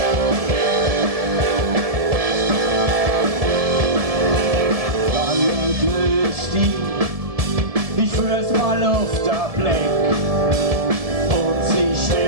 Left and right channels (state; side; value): late; left; 1.7 ms